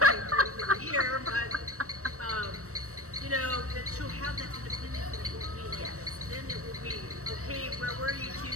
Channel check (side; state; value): left; late; 0.65 ms